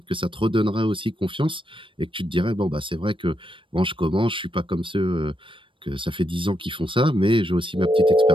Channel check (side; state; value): left; late; 0.25 ms